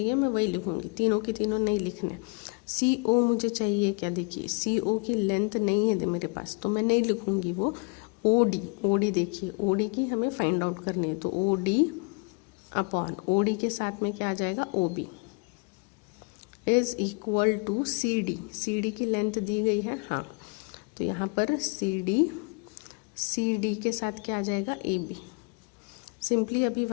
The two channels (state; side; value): quieter; right; 34.8 dB